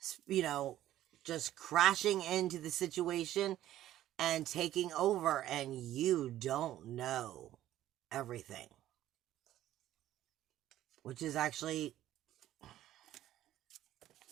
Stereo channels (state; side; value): quieter; left; 13.3 dB